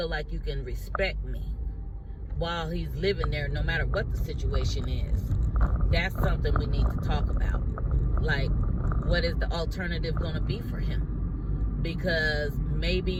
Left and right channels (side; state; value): both; identical; correlation 1.00